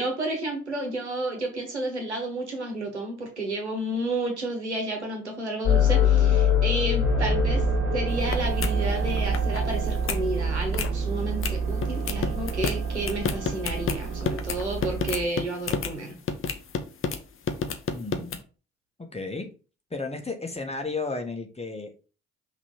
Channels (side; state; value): both; normal; correlation 0.50